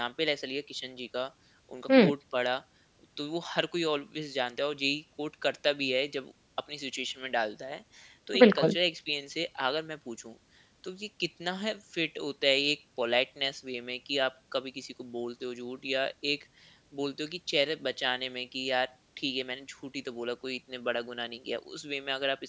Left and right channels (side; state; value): both; identical; correlation 1.00